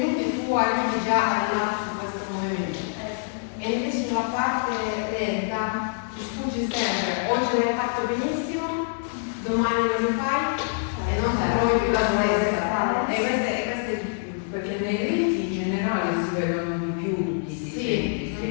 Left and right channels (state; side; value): silent; right; 61 dB below the other